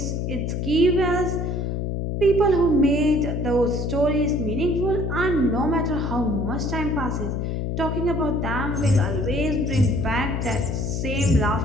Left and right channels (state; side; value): noise; left; hum, 2 dB below the sound